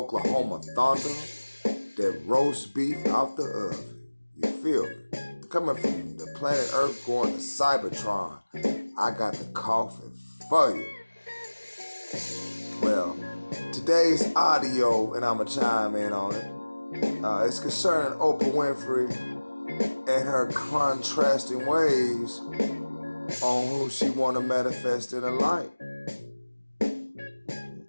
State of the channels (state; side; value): inverted; both; correlation -1.00